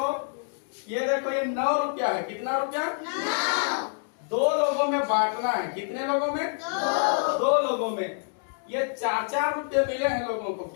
ये देखो, ये 9 रुपया है। कितना रुपया? 9। 2 लोगों में बांटना है। कितने लोगों में? 2 लोगों में। ये 4-4 रुपये मिले हैं लोगों को।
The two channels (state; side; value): silent; right; digital silence